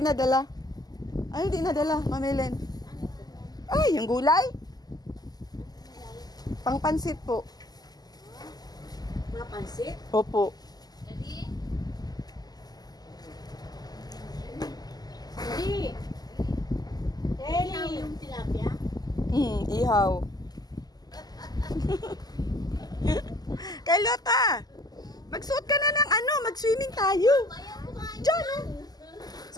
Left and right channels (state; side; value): late; right; 0.19 ms